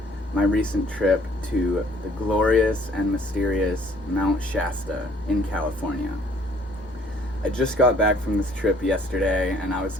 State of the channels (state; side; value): normal; both; correlation 0.59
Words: my recent trip to the glorious and mysterious Mount Shasta in California. I just got back from this trip yesterday, and I was